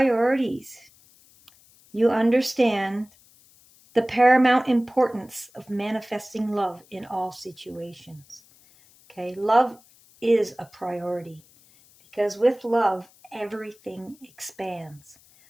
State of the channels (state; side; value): noise; left; hiss, 28 dB below the sound